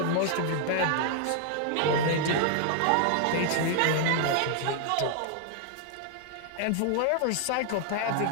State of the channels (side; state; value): both; different; correlation 0.00